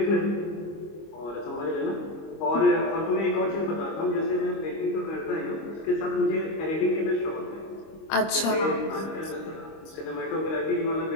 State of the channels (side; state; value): right; late; 25 ms